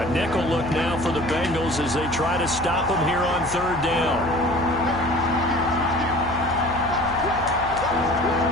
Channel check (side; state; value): left; noise; hum, 13 dB below the sound